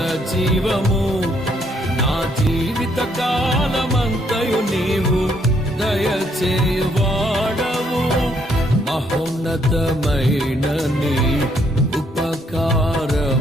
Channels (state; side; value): normal; both; correlation 0.71